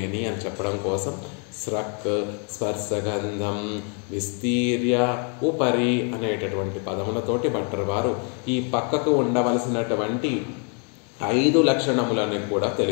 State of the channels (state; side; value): quieter; right; 39.9 dB